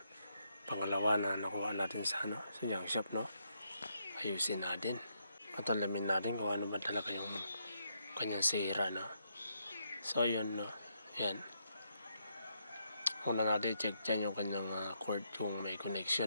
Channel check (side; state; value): both; inverted; correlation -0.77